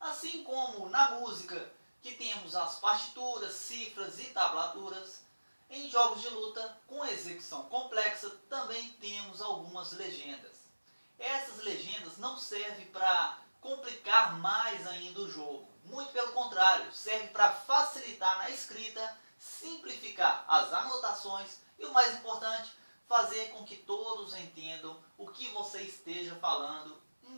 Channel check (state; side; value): inverted; both; correlation -1.00